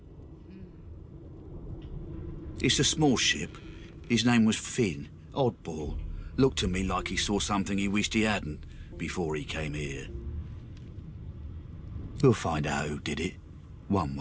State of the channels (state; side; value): identical; both; correlation 1.00